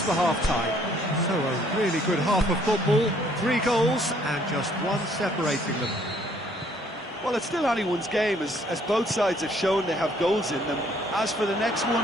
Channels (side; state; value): both; normal; correlation 0.63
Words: for half-time. So a really good half of football. 3 goals and just one separating them. Well, it's still anyone's game, as both sides have shown they have goals in them. As for the next